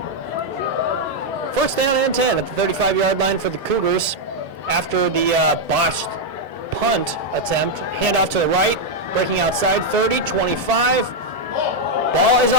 First down and 10 at the 35-yard line for the Cougars after the botched punt attempt. Handoff to the right, breaking outside, 30, 25. Ball is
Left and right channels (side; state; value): both; normal; correlation -0.01